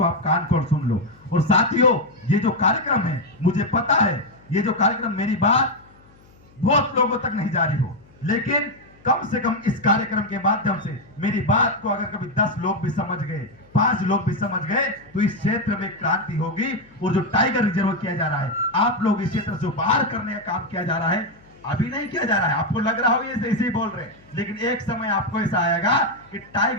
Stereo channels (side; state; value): left; noise; hum, 28 dB below the sound